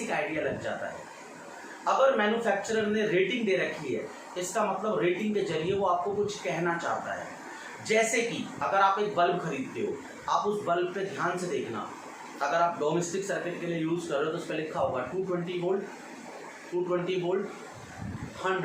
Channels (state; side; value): identical; both; correlation 1.00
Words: आइडिया लग जाता है. अगर मैन्युफैक्चरर ने रेटिंग दे रखी है, इसका मतलब रेटिंग के जरिए वो आपको कुछ कहना चाहता है. जैसे कि अगर आप एक बल्ब खरीदते हो, आप उस बल्ब पे ध्यान से देखना. अगर आप डोमेस्टिक सर्किट के लिए यूज़ कर रहे हो तो उस पर लिखा होगा 220 volt, 220 volt